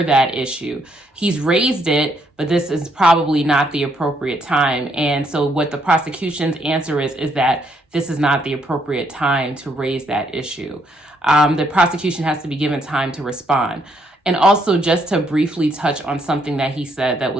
that issue. He's raised it, but this is probably not the appropriate time. And so what the prosecution's answer is that this is not the appropriate time to raise that issue. The prosecution has to be given time to respond. And also, just to briefly touch on something that he said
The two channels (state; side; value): normal; both; correlation 0.73